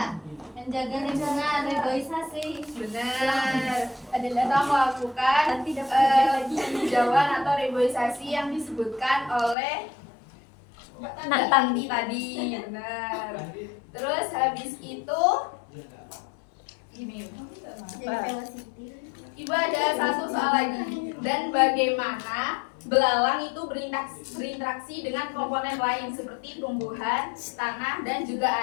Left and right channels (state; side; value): drops out; right; at 9.6 s